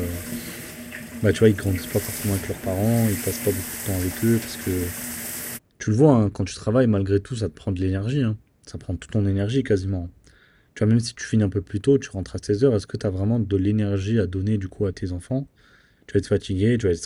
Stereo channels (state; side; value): identical; both; correlation 1.00